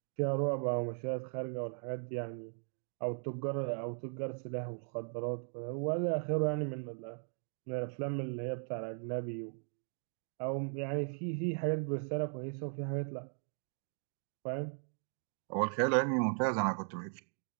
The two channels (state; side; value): silent; left; 52 dB below the other